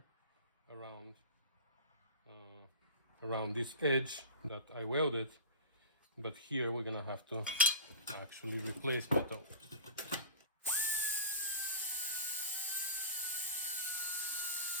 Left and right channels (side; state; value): both; inverted; correlation -0.33